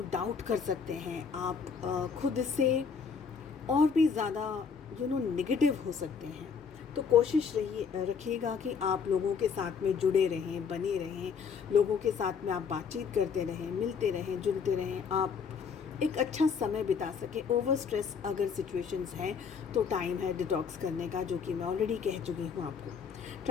डाउट कर सकते हैं। आप खुद से और भी ज़्यादा नेगेटिव हो सकते हैं। तो कोशिश रखिएगा कि आप लोगों के साथ में जुड़े रहें, बने रहें, लोगों के साथ में आप बातचीत करते रहें, मिलते रहें, जुलते रहें, आप एक अच्छा समय बिता सकें। ओवर स्ट्रेस अगर सिचुएशंस हैं तो टाइम है डिटॉक्स करने का, जो कि मैं ऑलरेडी कह चुकी हूँ आपको।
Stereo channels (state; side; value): quieter; right; 6.1 dB